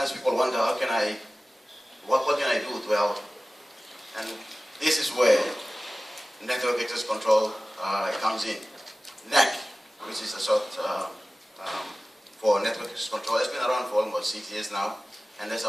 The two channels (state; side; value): normal; both; correlation 0.97